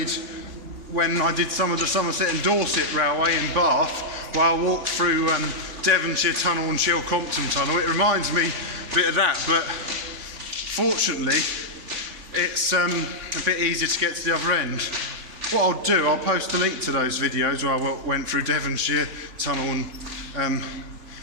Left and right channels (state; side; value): late; left; 3.6 ms